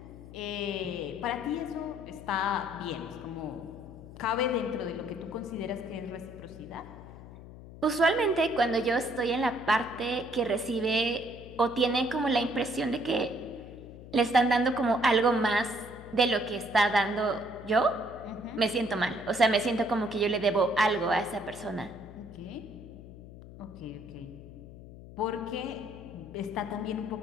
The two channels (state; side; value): noise; left; hum, 16 dB below the sound